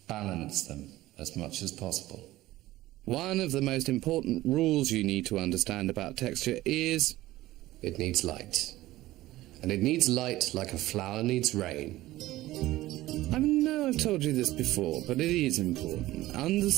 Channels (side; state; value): left; quieter; 16.6 dB